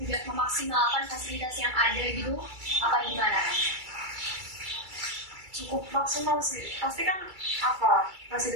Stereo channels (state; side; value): late; left; 2.3 ms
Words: memaksimalkan fasilitas yang ada gitu? Apa gimana? Cukup maksimal sih. Pasti kan